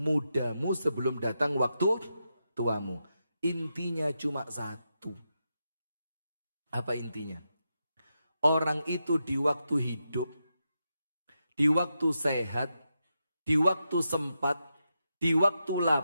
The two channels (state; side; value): inverted; both; correlation -0.87